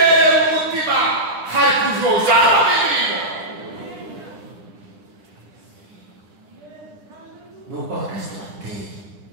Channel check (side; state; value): left; late; 10 ms